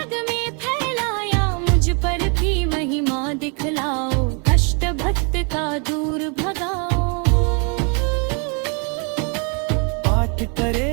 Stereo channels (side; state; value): left; quieter; 36.3 dB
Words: में फैलाया। मुझ पर भी महिमा दिखलाओ, कष्ट भक्त का दूर भगाओ। पाठ